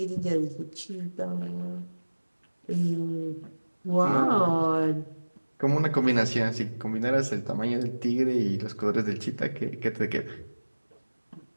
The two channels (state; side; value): inverted; both; correlation -1.00